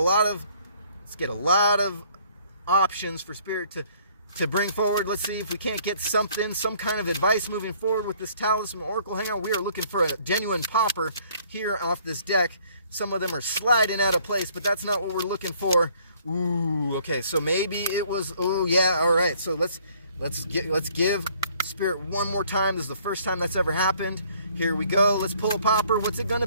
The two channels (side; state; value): both; inverted; correlation -0.60